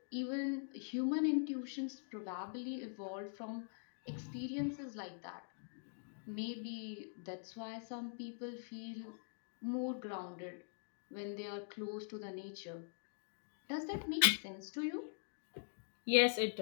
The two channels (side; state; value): right; silent; digital silence